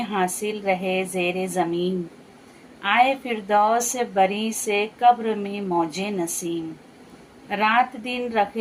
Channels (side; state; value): both; identical; correlation 1.00